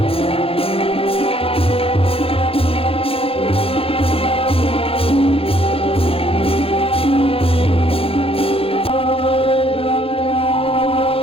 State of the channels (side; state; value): right; late; 0.27 ms